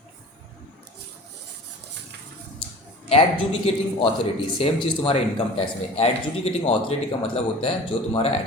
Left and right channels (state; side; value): normal; both; correlation 0.40